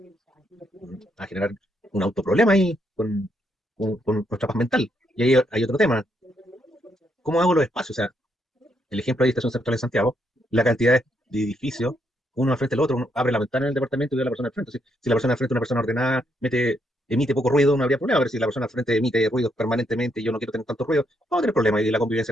a generar un autoproblema ahí con nuestra paz mental. Y ahí hay otro tema, ¿cómo hago los espacios? O sea, el ejemplo de Estación Central en Santiago, la cantidad de edificios, uno al frente del otro, uno abre la ventana en el departamento y ve a la persona al frente. Si la persona al frente es una persona ordenada, emite poco ruido, no habría problema, pero si la persona al frente emite ruidos permanentemente y yo no quiero tener tanto ruido, vamos a tener problemas y la convivencia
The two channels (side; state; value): both; normal; correlation 0.76